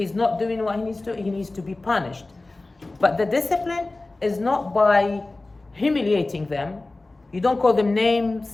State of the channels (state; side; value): quieter; right; 3.1 dB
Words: not doing what he needs to be punished. But the discipline is not by humiliating them. You don't call them